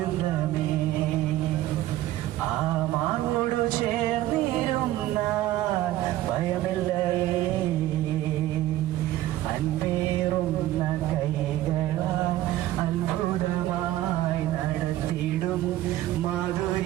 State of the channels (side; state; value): left; quieter; 14.7 dB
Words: ആ മാർവോടു ചേർന്നിരുന്ന ഭയമില്ല അൻപേറുന്ന കൈകളാൽ അത്ഭുതമായി നടത്തിടും